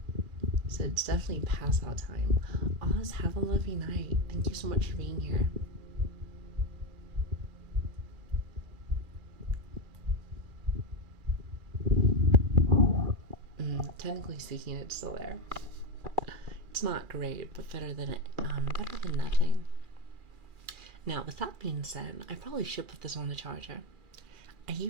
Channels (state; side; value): late; left; 2.4 ms